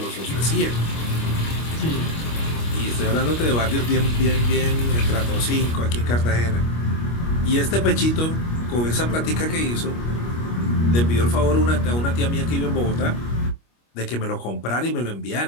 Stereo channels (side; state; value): right; late; 25 ms